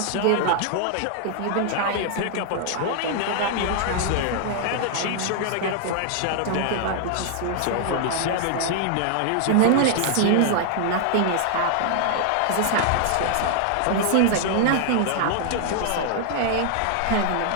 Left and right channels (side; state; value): both; different; correlation -0.01